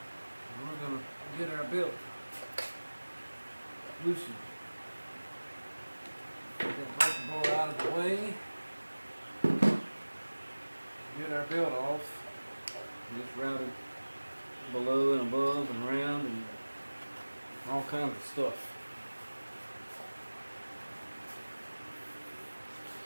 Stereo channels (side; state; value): both; inverted; correlation -1.00